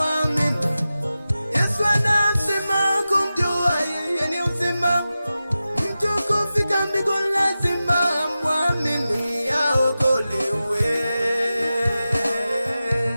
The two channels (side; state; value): both; inverted; correlation -0.94